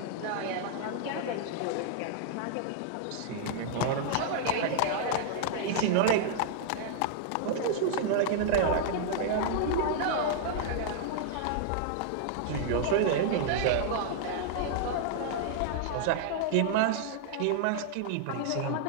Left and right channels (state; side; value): different; both; correlation -0.01